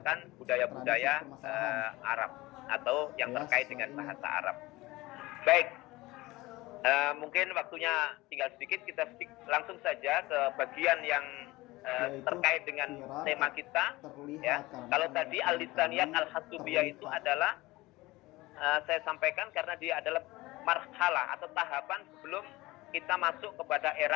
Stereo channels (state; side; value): quieter; right; 20.2 dB